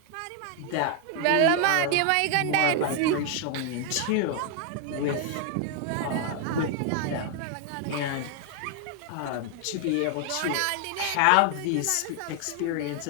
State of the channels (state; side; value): different; both; correlation 0.00